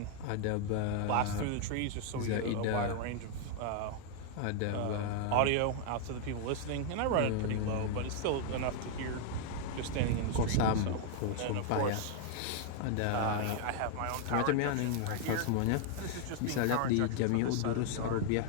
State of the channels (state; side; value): different; both; correlation 0.00